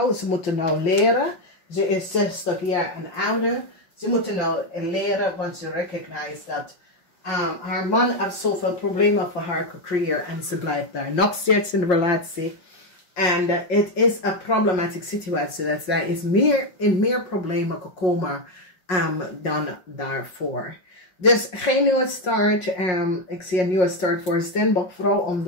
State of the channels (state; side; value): late; right; 5.5 ms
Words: Ze moeten nou leren. Ze is 60 jaar en ouder. Ze moeten nou leren, want ze recognize dat haar man heeft zoveel problemen voor haar gecreëerd en ze blijft daar nog steeds in de relatie. En het is een problematische situatie. Dat zij is meer problemen gekomen dan daarvoor. Dus geen nieuwe start. Ik zie een nieuwe start voor steenbokvrouw. Om